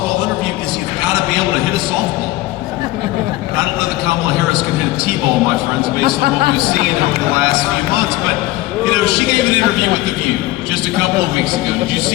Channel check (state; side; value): quieter; right; 18.0 dB